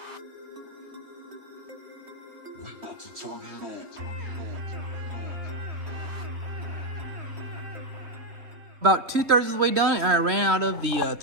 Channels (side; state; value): left; late; 3.3 ms